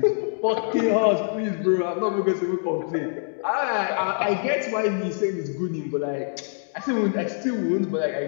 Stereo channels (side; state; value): right; silent; digital silence